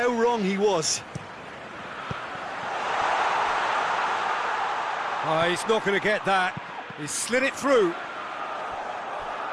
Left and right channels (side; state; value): both; identical; correlation 1.00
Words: wrong he was. Oh, he's not going to get that. He's slid it through.